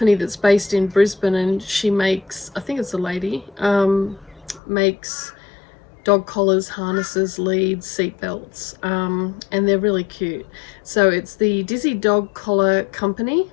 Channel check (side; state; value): right; drops out; at 4.6 s